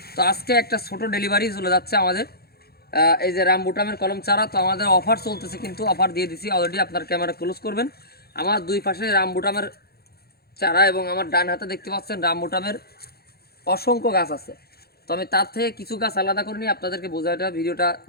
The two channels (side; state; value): right; late; 0.46 ms